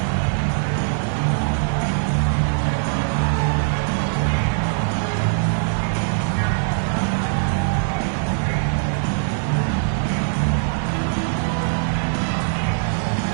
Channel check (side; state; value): left; silent; 59 dB below the other